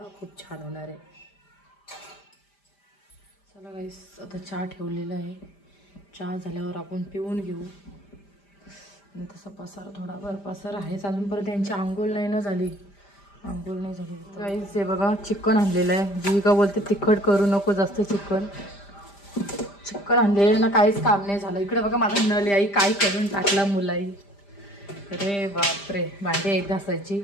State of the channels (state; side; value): late; right; 5.0 ms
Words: खूप छान होणार आहे. चला गाईज, आता चहा ठेवलेला आहे. चहा झाल्यावर आपण पिऊन घेऊ. आणि तसा पसारा थोडाफार पसारा आहेच अजूनपर्यंत. त्यांची आंघोळ नाही ना झाली. आंघोळ नाही झाली गाईज. हे बघा चिकन आणलेलं आहे. जीविका बोलते तिखट करू नको जास्त. चिकन आणलेलं ना, काहीच काम नाही झालं. इकडे बघा माझा नळ आई काय करून टाकला मुलाई. अरे बापरे, भांडी आहेत घासायची.